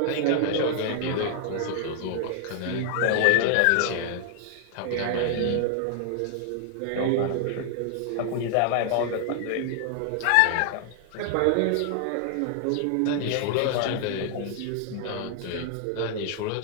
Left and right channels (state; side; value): different; both; correlation 0.00